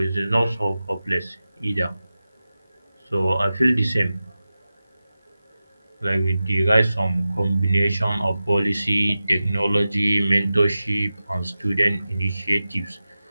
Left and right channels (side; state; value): both; inverted; correlation -0.94